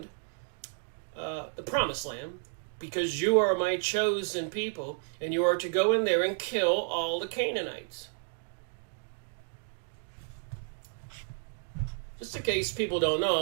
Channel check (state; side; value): silent; left; digital silence